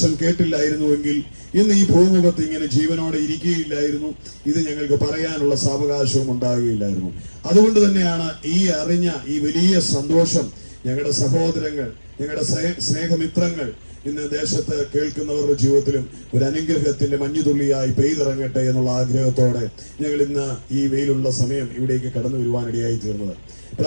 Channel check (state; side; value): inverted; both; correlation -1.00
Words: കേട്ടില്ലായിരുന്നുവെങ്കിൽ ഇന്ന് ഈ ഭൂമുഖത്ത് ഇങ്ങനെ ജീവനോടെ ഇരിക്കുകയില്ലായിരുന്നു. ഇത് ഞങ്ങൾക്ക് പറയാനുള്ള സാവകാശവും ഉണ്ടാകുകയില്ലായിരുന്നു. അതുകൊണ്ട് തന്നെയാണ് ഈ അറിഞ്ഞ ഈ വലിയ സന്തോഷം ഞങ്ങളുടെ സഹോദരങ്ങൾ, ഞങ്ങളുടെ സ്നേഹമിത്രങ്ങൾ ഇന്ന് ദേശത്ത് കേൾക്കുന്നവരുടെ ജീവിതത്തിലും ഒരു അനുഗ്രഹത്തിന്റെ മഞ്ഞുതുള്ളിയായി പെയ്തിറങ്ങട്ടെ എന്നുള്ള ആഗ്രഹത്തോടെ ഞങ്ങൾ ഇന്ന് ഈ വെയിലുള്ള സമയം ഇവിടേക്ക് കടന്നു വരുവാനിടയായി തീർന്നത്.